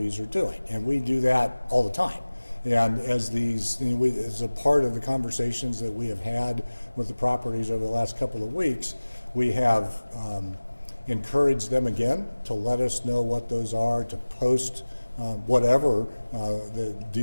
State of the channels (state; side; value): inverted; both; correlation -1.00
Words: are doing. And we do that all the time. And as as a part of the conversations that we have had with the properties over the last couple of weeks, we have encouraged them again to let us know what those are, to post whatever the